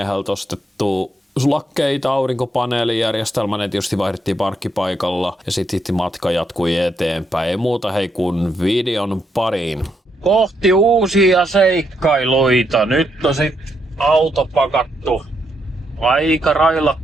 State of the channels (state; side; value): normal; both; correlation 0.78